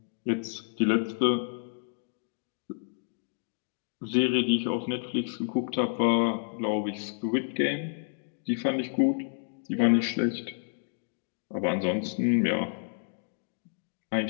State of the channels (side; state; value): right; silent; digital silence